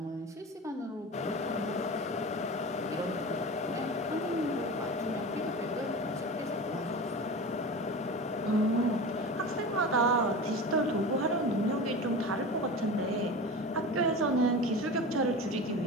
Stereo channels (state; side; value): normal; both; correlation 0.30